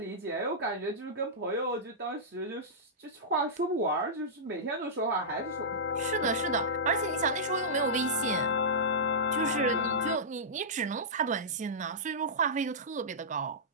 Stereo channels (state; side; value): normal; both; correlation -0.14